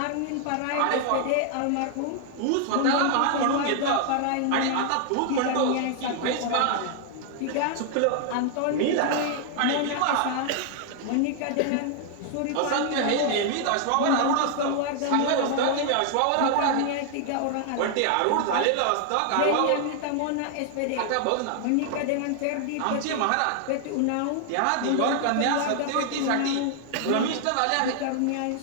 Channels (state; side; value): different; both; correlation 0.00